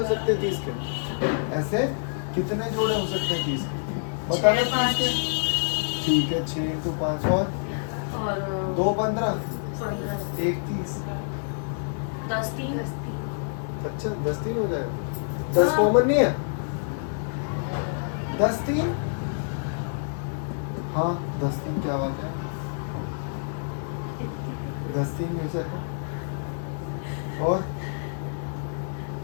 सकते हैं 30 के, ऐसे कितने जोड़े हो सकते हैं 30 के, बता दो। 5 ठीक है, 6 इंटू 5 और 2 15, 15 1 30, 10 3 अच्छा 10 3 हो जाएगा। 10 कॉमन नहीं है, 10 3, हाँ 10 3, क्या बात है, 10 3 में से और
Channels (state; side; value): silent; right; digital silence